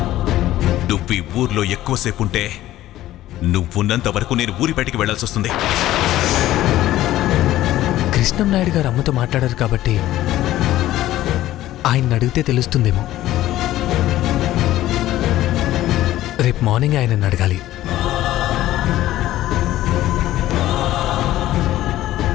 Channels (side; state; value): right; quieter; 14.6 dB